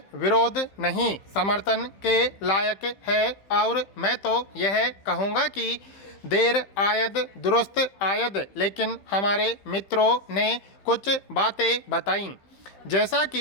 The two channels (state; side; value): late; right; 15 ms